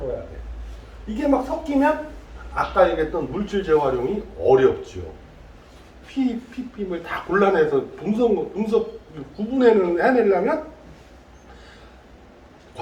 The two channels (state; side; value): identical; both; correlation 1.00